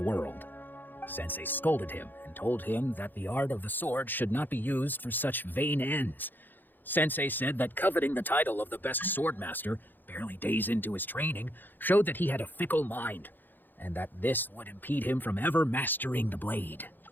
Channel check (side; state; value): right; late; 0.090 ms